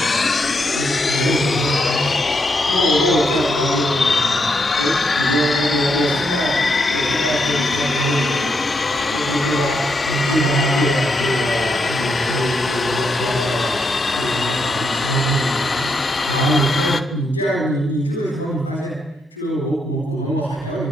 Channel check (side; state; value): both; normal; correlation 0.79